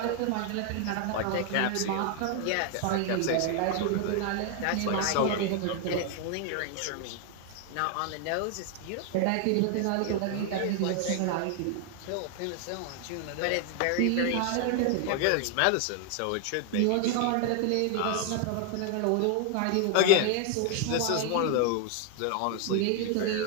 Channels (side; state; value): both; different; correlation 0.00